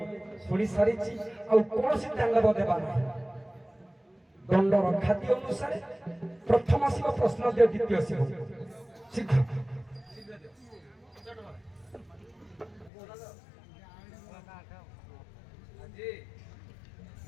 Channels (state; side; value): drops out; right; at 12.9 s